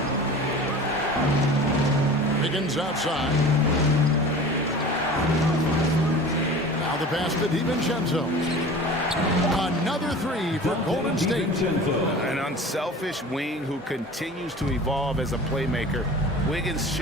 Wiggins outside. Now the pass to DiVincenzo. Another 3 for Golden State. An unselfish wing who continues to evolve as a playmaker. Wiggins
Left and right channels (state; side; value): normal; both; correlation 0.39